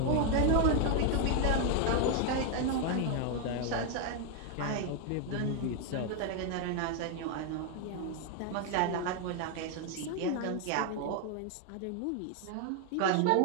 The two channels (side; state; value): both; different; correlation 0.01